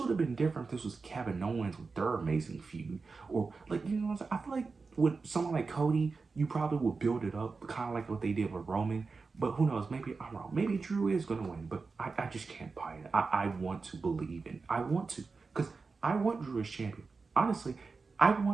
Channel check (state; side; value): quieter; left; 4.4 dB